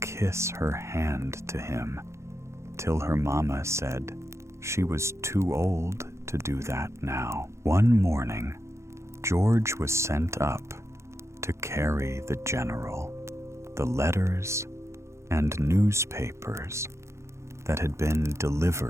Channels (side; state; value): left; late; 0.14 ms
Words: her hand to him, till her mamma said she was too old to do that now. One morning, George was sent up to carry the general the letters and newspapers that had been